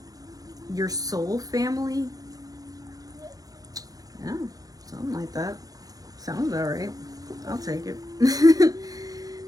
your soul family. Yeah, something like that. Sounds all right. I'll take it.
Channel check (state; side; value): late; left; 0.18 ms